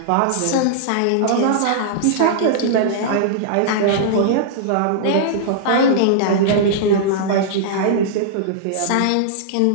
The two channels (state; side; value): different; both; correlation -0.02